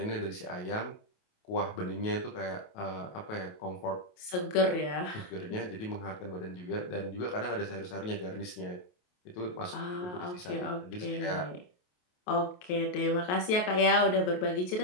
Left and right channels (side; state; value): right; late; 28 ms